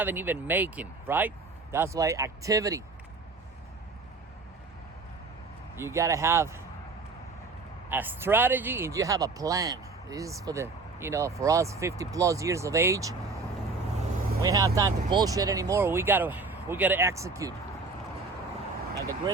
even making, right? That's why activity. You gotta have a strategy and you have a plan. This is for for us 50 plus years of age. We don't have time to bullshit anymore. We gotta execute. And the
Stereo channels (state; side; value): quieter; left; 3.9 dB